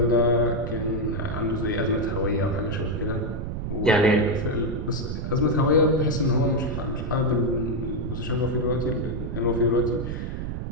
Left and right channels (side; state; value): right; noise; rumble, 5 dB below the sound